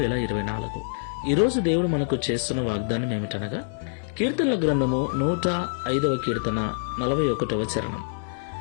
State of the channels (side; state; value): right; silent; 61 dB below the other